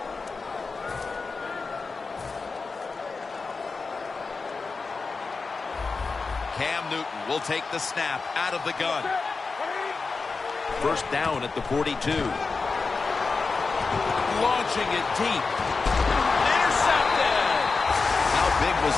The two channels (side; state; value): right; quieter; 4.4 dB